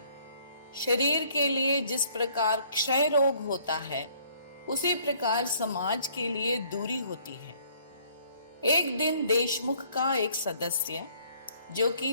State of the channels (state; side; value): inverted; both; correlation -0.62